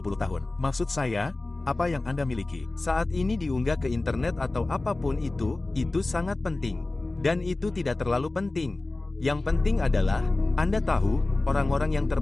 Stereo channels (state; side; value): quieter; right; 3.0 dB